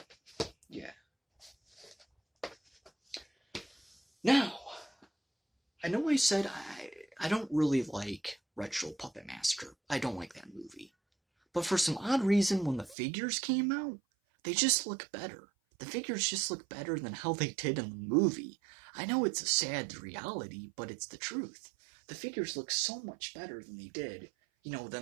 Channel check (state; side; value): drops out; left; at 13.0 s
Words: yeah. Now, I know I said I don't really like Retro Puppet Master. I don't like that movie. But for some odd reason, when the figures came out, they just look better. The figures just look better than how they did in the movie. I know it's a sad reality, but it's the truth. The figures look so much better than they did,